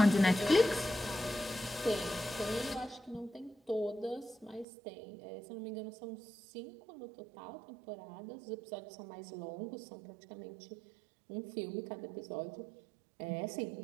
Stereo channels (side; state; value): left; drops out; at 4.7 s